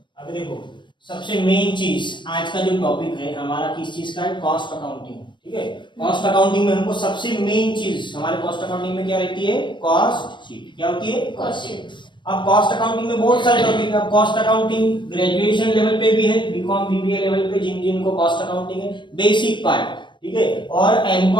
देखो, सबसे मेन चीज आज का जो टॉपिक है हमारा किस चीज का है, कॉस्ट अकाउंटिंग। ठीक है, कॉस्ट अकाउंटिंग में हमको सबसे मेन चीज हमारे कॉस्ट अकाउंटिंग में क्या रहती है, कॉस्ट शीट। क्या होती है, कॉस्ट शीट। अब कॉस्ट अकाउंटिंग में बहुत सारे टॉपिक है। अब कॉस्ट अकाउंटिंग ग्रेजुएशन लेवल पे भी है, बीकॉम बीबीए लेवल पे जिन जिनको कॉस्ट अकाउंटिंग है बेसिक पार्ट। ठीक है, और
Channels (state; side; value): late; right; 0.22 ms